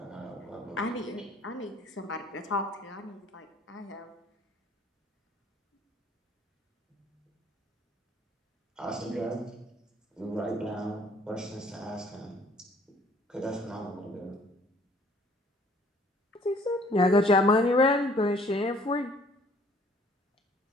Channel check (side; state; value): both; normal; correlation 0.57